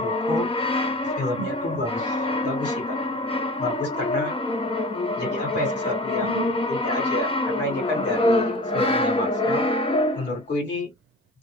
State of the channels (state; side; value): normal; both; correlation 0.37